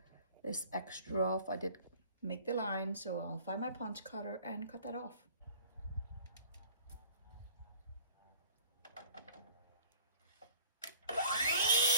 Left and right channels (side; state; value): both; inverted; correlation -0.50